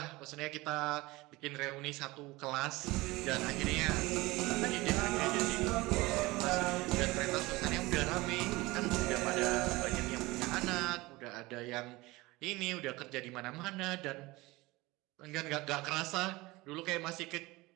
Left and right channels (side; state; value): left; quieter; 21.2 dB